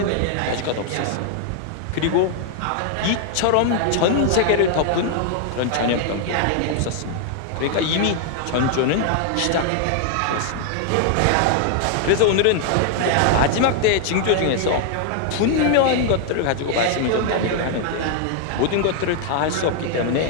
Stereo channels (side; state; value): both; different; correlation 0.00